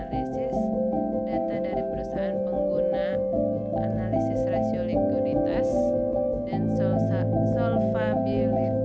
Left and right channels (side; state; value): both; identical; correlation 1.00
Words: data dari perusahaan pengguna, analisis rasio likuiditas dan